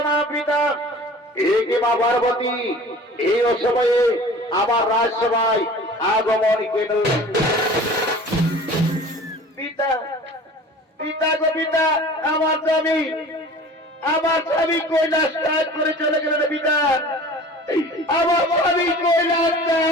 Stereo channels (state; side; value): normal; both; correlation 0.43